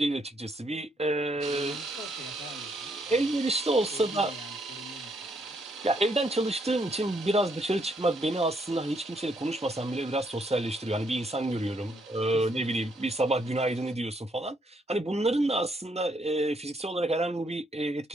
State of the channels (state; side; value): normal; both; correlation 0.73